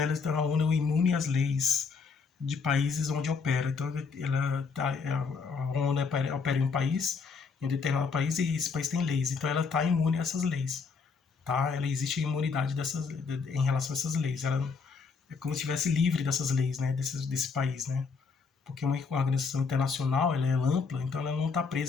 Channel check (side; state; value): right; quieter; 5.1 dB